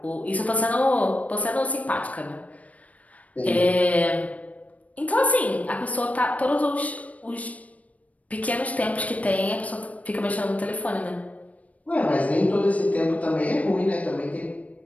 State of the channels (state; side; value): late; right; 0.069 ms